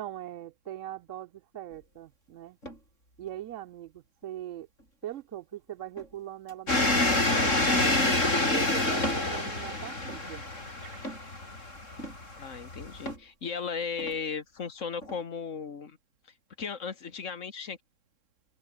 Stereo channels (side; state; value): right; late; 3.7 ms